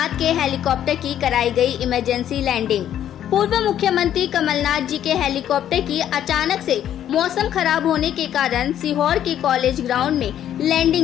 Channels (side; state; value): right; quieter; 10.7 dB